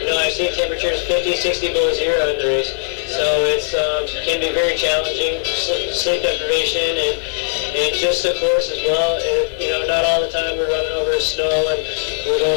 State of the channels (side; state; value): right; silent; 64 dB below the other